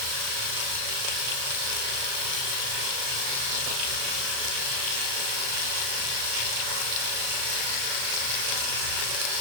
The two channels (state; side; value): late; left; 36 ms